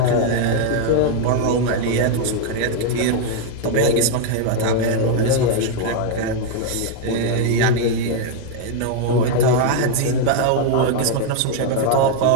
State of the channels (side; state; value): both; different; correlation 0.00